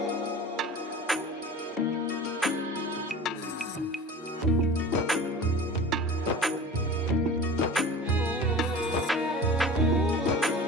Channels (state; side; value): normal; both; correlation 0.38